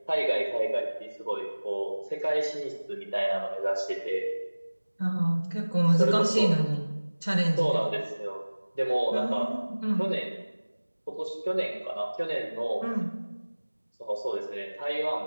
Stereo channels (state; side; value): inverted; both; correlation -1.00